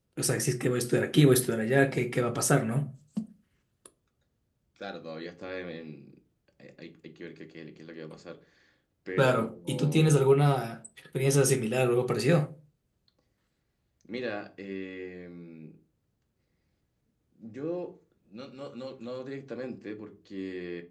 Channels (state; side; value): identical; both; correlation 1.00